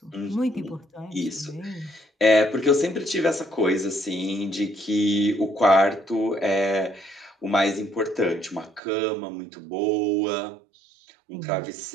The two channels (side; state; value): left; drops out; at 8.8 s